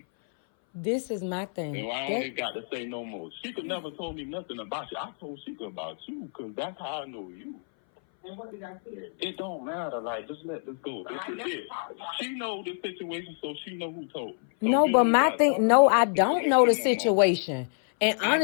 This is my thing. And I only got to say no more. Shashicka never told me nothing about you. I told Shashicka about you, because that's how I know you. And what did I say? It don't matter. Like, just let this go. This is it. She know the situation, so she know who told me. So no, but my thing, no, I don't know the situation. And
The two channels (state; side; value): silent; right; 58 dB below the other